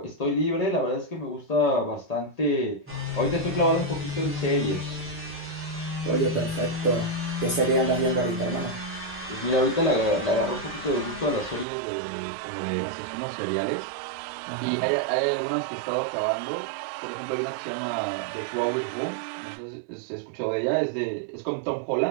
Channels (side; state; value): left; drops out; at 11.7 s